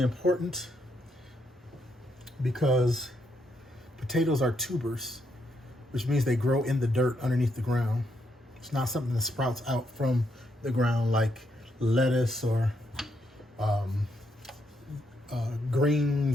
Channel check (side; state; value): both; normal; correlation 0.78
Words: important because potatoes are tubers, which means they grow in the dirt underneath the ground. It's not something that sprouts out from the ground like lettuce or